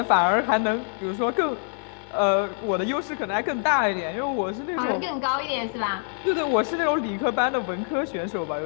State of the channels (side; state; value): right; silent; 58 dB below the other